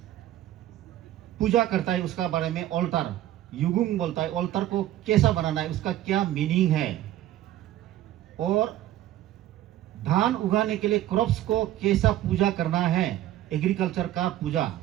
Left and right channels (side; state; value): left; quieter; 13.6 dB